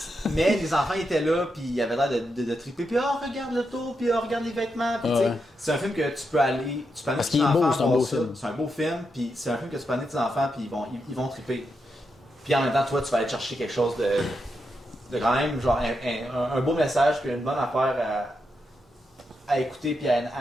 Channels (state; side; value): normal; both; correlation 0.84